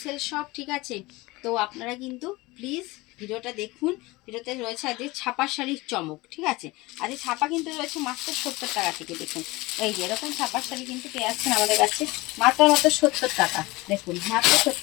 শপ, ঠিক আছে? তো আপনারা কিন্তু প্লিজ ভিডিওটা দেখুন। ভিডিওতে রয়েছে আজকে ছাপার শাড়ির চমক, ঠিক আছে? আর এই ছাপা কিন্তু রয়েছে মাত্র 70 টাকা থেকে। দেখুন এই যে এরকম ছাপার শাড়ি কিন্তু পেয়ে যাচ্ছেন আমাদের কাছে মাত্র 70 টাকা। দেখুন মাত্র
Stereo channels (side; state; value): right; quieter; 21.8 dB